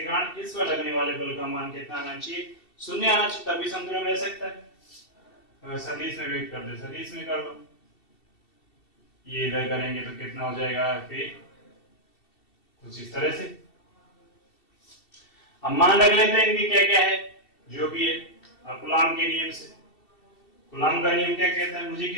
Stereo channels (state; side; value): late; right; 2.7 ms